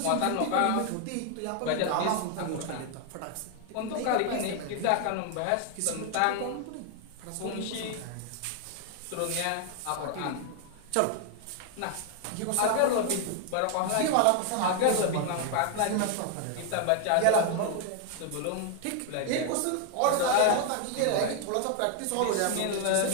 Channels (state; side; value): different; both; correlation 0.00